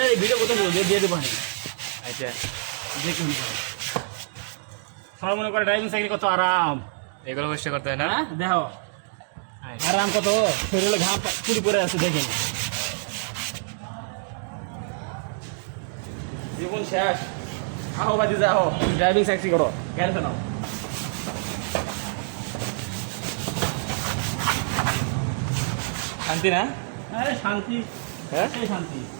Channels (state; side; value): silent; left; digital silence